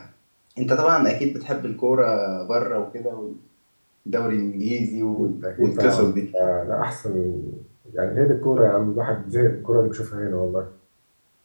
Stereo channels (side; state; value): both; inverted; correlation -1.00